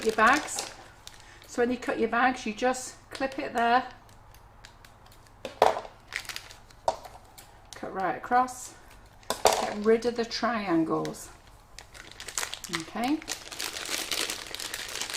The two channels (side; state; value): both; identical; correlation 1.00